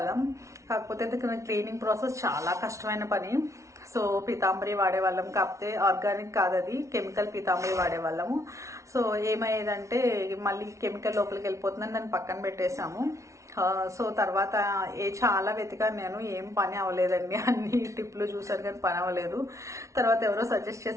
కాకపోతే క్లీనింగ్ ప్రాసెస్ చాలా కష్టమైన పని. సో పీతాంబరి వాడేవాళ్ళం, కాకపోతే ఆర్గానిక్ కాదు, అది కెమికల్ పీతాంబరి వాడేవాళ్ళము. సో ఏమయ్యేదంటే మళ్ళీ కెమికల్ లోపలికి వెళ్ళిపోతుందని దాన్ని పక్కన పెట్టేశాము. సో తర్వాత చాలా వెతికాను నేను, ఏం పని అవ్వలేదండి. అన్ని టిప్లు చూసాను కానీ పని అవ్వలేదు. తర్వాత ఎవరో సజెస్ట్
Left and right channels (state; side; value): late; left; 0.14 ms